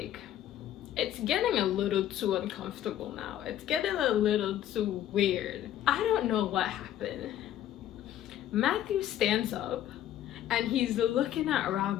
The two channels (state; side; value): quieter; right; 11.8 dB